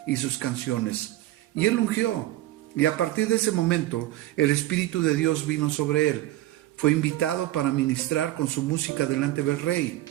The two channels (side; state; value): left; quieter; 15.6 dB